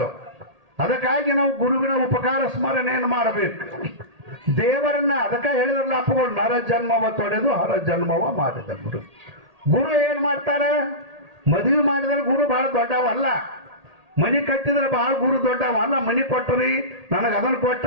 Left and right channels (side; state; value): left; late; 1.8 ms